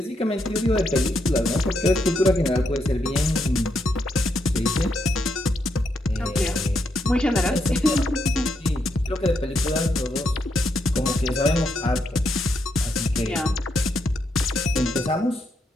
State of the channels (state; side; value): normal; both; correlation 0.79